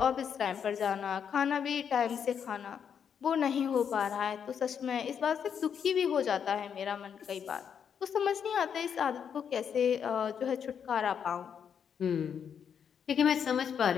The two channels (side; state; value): right; quieter; 7.6 dB